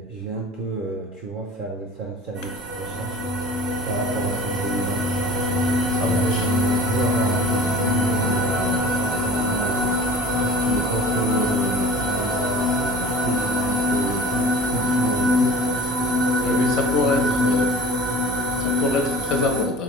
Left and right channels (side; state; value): both; normal; correlation 0.42